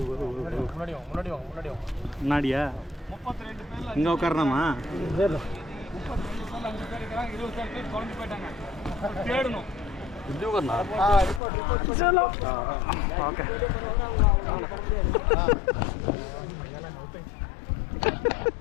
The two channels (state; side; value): drops out; right; at 11.4 s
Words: முன்னாடியா? 32 பேர்ல இங்கே உட்காரணுமா? 32 பேர்ல 5 பேர் இருக்காங்க, 20 பேர் குழம்பு போயிட்டாங்க. தேடணும். இது உட்காரனா? ரிப்போர்ட் चलो. ஓகே.